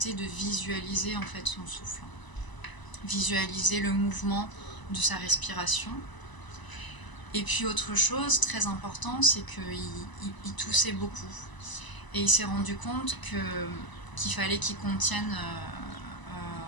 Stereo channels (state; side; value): late; right; 1.0 ms